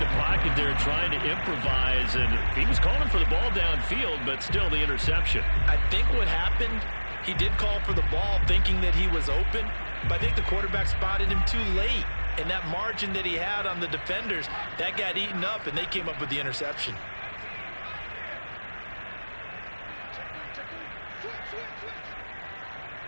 pocket there trying to improvise, and he was calling for the ball downfield, but still the interception. I think what happened, he did call for the ball thinking that he was open, but I think the quarterback spotted him too late. And that margin that he had on the defenders, that got eaten up, and they came up with the interception.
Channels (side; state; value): both; inverted; correlation -1.00